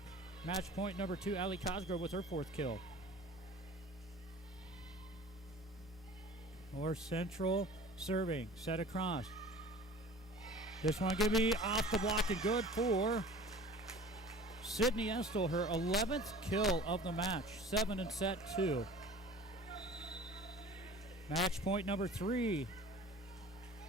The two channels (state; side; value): normal; both; correlation 0.43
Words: match point number 2, Allie Cosgrove with her 4th kill. North Central serving. Set across. This one going to be off the block and good for Sydney Estel, her 11th kill of the match. 7 in set 2. Match point number 3